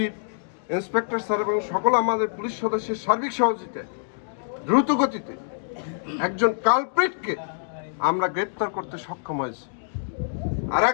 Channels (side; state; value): right; silent; digital silence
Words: ইন্সপেক্টর স্যার এবং সকল আমাদের পুলিশ সদস্যের সার্বিক সহযোগিতায় দ্রুত গতিতে একজন কালপ্রিটকে আমরা গ্রেপ্তার করতে সক্ষম হয়েছি। আর